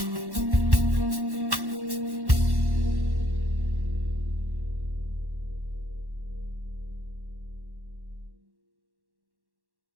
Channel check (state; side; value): late; left; 1.1 ms